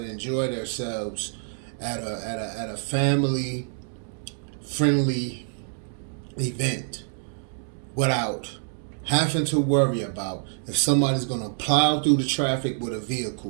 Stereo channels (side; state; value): left; silent; digital silence